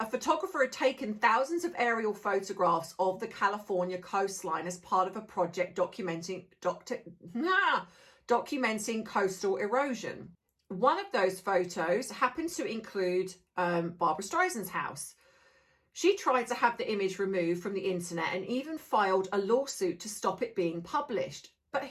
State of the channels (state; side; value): identical; both; correlation 1.00